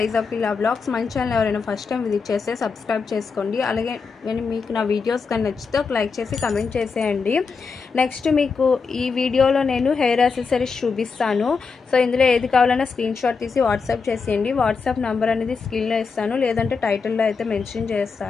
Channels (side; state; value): right; quieter; 5.1 dB